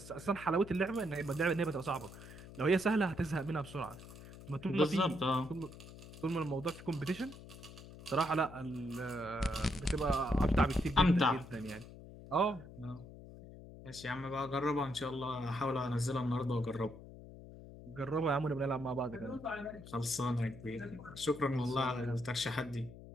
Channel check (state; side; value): noise; left; hum, 16 dB below the sound